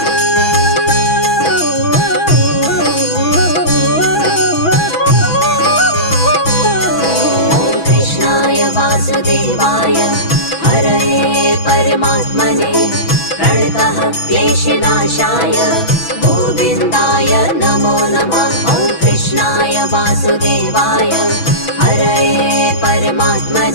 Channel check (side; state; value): right; late; 6.1 ms